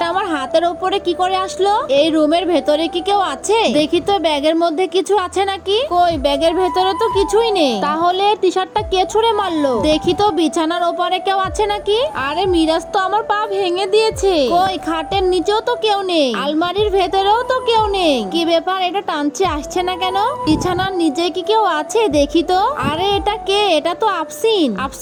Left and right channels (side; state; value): both; identical; correlation 1.00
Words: আমার হাতের উপরে কি করে আসলো? এই রুমের ভেতরে কি কেউ আছে? দেখি তো ব্যাগের মধ্যে কিছু আছে নাকি। কই ব্যাগের ভেতরে তো কিছুই নেই। তাহলে টি শার্টটা কে ছুঁড়ে মারলো? দেখি তো বিছানার ওপরে কেউ আছে নাকি। আরে মিরাজ তো আমার পা ভেঙে দিয়েছে। কই খাটের নিচেও তো কেউ নেই। আলমারির ভেতরেও তো কেউ নেই। কি ব্যাপার? এটা টানছে আসছে না কেন? বিছানার নিচে কি কেউ আছে? দেখি তো। আরে এটা কে? এটা তো আফসিন।